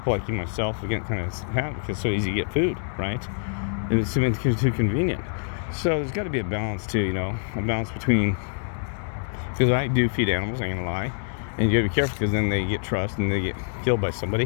like you myself, we get kind of have because it's so easy to get food, right? And it's too convenient. So there's got to be a balance too, a balance between, because I do feed animals, I ain't gonna lie, and you gotta be careful because then they get trust and they get killed by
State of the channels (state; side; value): silent; right; digital silence